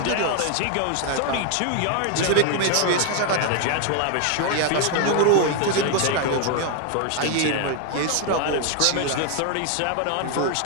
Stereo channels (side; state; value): both; different; correlation 0.00